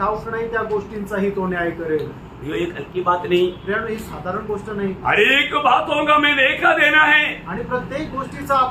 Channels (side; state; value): both; identical; correlation 1.00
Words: नाही त्या गोष्टींचाही तो न्याय करेल। ये एक हल्की बात नहीं, प्रियांनो, ही साधारण गोष्ट नाही, हर एक बातों का मैं लेखा देना है। आणि प्रत्येक गोष्टीचा